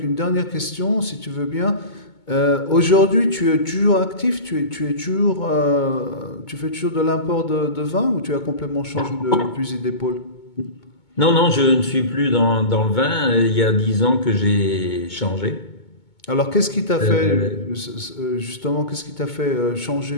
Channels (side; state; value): right; late; 2.2 ms